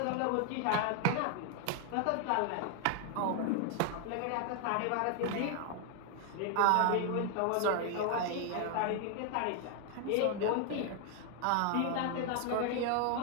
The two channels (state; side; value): different; both; correlation 0.00